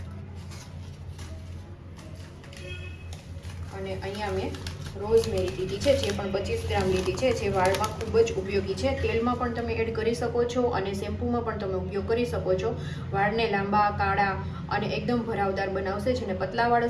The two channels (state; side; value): identical; both; correlation 1.00